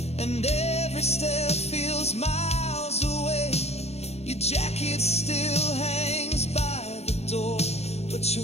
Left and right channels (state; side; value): late; right; 0.31 ms